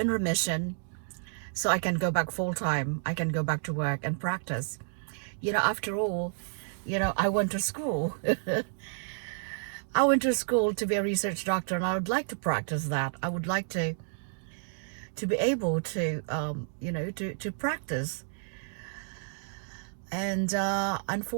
remission, so I can go back full time. I can go back to work and practice. After all, I went to school. I went to school to be a research doctor, and I would like to practice that. I would like to be able to to practice. And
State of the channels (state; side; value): silent; left; digital silence